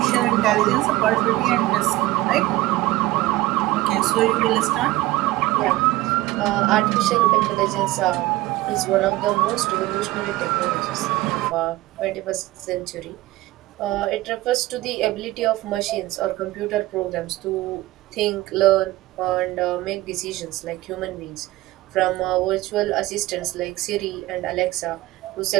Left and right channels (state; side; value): quieter; left; 18.1 dB